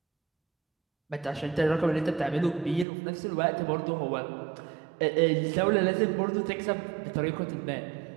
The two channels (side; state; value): left; drops out; at 2.9 s